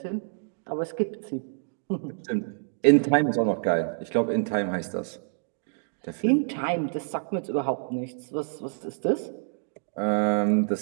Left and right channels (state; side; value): silent; left; digital silence